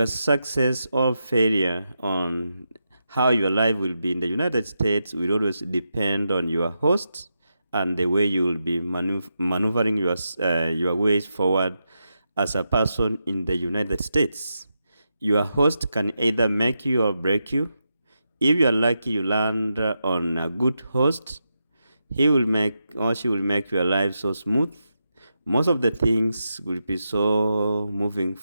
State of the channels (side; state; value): both; inverted; correlation -0.87